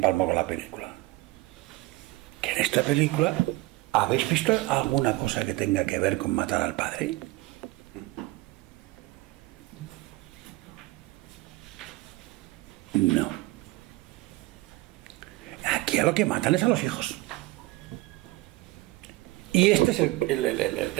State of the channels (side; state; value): left; quieter; 20.2 dB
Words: Palmo con la película? Que en esta película, ¿habéis visto alguna cosa que tenga que ver con matar al padre? No. Aquí a lo que matan es a los hijos. Y este es